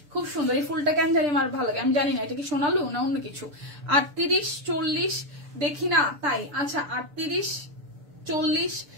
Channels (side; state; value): left; late; 6.9 ms